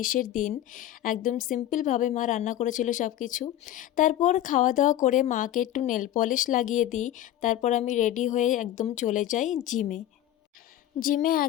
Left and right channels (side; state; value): right; quieter; 12.4 dB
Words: দিন। একদম সিম্পলভাবে মা রান্না করেছিল সব কিছু। তারপর খাওয়া দাওয়া করে মাকে একটু নেল পলিশ লাগিয়ে দিই। তারপর আমি রেডি হয়ে একদম চলে যাই জিমে। জিমে